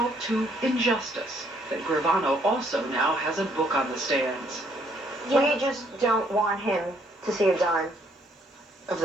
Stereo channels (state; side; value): normal; both; correlation 0.67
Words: to injustice that Gravano also now has a book on the stands. We just don't want him to see a dime of